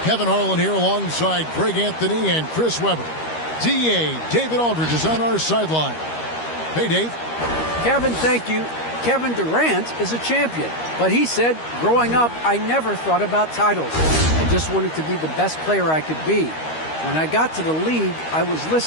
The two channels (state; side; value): late; right; 13 ms